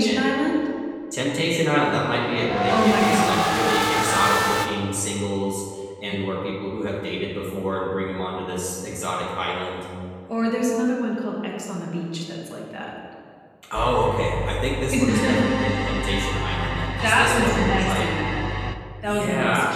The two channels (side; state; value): both; identical; correlation 1.00